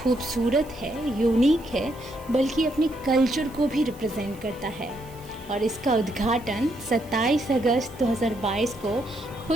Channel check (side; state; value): right; noise; hiss, 24 dB below the sound